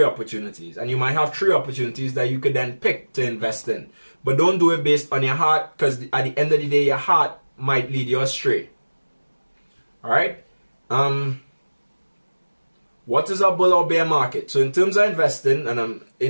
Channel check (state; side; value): inverted; both; correlation -1.00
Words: opportunities, and you might have 3 opportunities that you could then pick to invest in. But don't do it based on your heart, because at the end of the day, your heart might lead you astray. All right. What is a bull or bear market? So in terms of investing, and